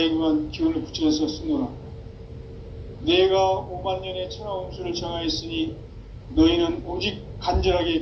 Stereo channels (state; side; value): identical; both; correlation 1.00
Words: 기운을 붙여서 쓰노라. 내가 5만 년의 천하 운수를 정하였으니 너희는 오직 간절하게